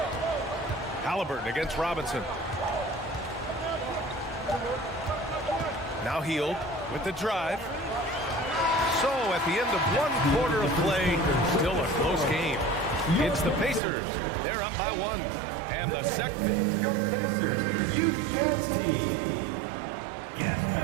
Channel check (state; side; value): drops out; left; at 13.8 s